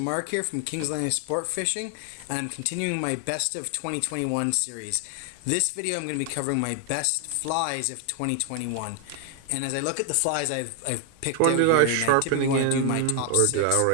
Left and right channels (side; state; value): both; different; correlation 0.00